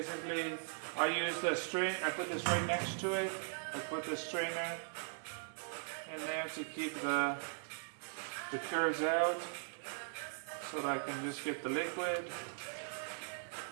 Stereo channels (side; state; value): left; silent; digital silence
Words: I use the strain. I put this right next to it. I put the strainer in there to keep the curds out, so that I can just get the liquid.